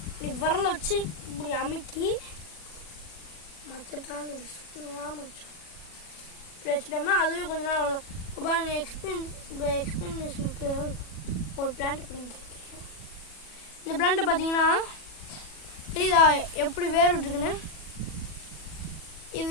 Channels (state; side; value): late; right; 40 ms